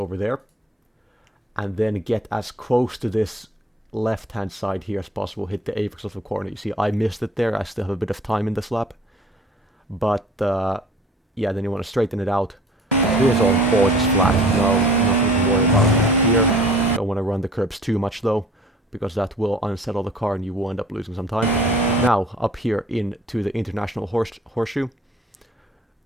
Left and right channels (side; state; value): both; normal; correlation 0.50